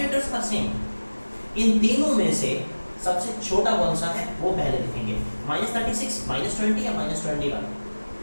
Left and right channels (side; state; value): both; inverted; correlation -1.00